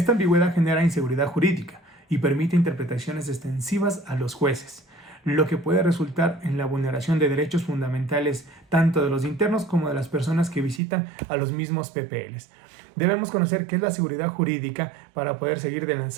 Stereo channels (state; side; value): drops out; left; at 10.8 s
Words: ambigüedad genera inseguridad jurídica y permite interpretaciones extensivas a los jueces, lo que puede resultar en la vulneración de derechos fundamentales tanto de los internos como de las personas que visitan a los mismos PPLs. Debemos conocer qué es la seguridad jurídica para poder seguir